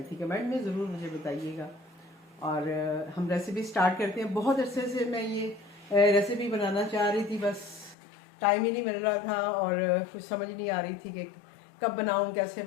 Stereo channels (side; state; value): right; drops out; at 8.0 s